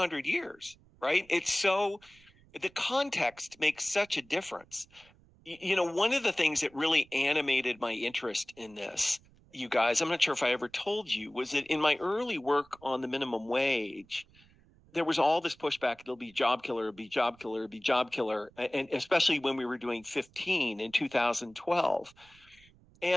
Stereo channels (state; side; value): noise; right; rumble, 28 dB below the sound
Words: years, right? It's so, the context makes such a difference. One of the things that really animated my interest in this, you guys, I'm not sure if I ever told you, was that in my early work on the minimum wage, there was all this pushback. It'll be job killer, it'll be job killer, it'll be job killer. And especially when we were doing 15 in 2012.